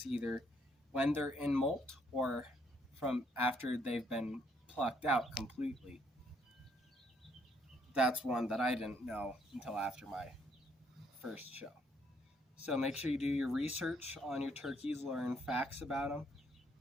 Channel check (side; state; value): both; normal; correlation 0.70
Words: either when they're in molt or from after they've been plucked out completely. That's one that I didn't know until after my first show. So make sure you do your research on your turkeys, learn facts about them